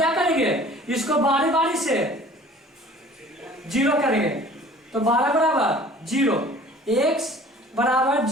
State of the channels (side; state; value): both; normal; correlation 0.49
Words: करेंगे, इसको बारी बारी से 0 करेंगे, तो 12 बराबर 0, x बराबर